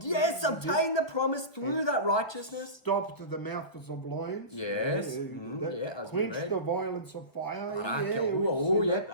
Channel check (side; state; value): right; late; 1.3 ms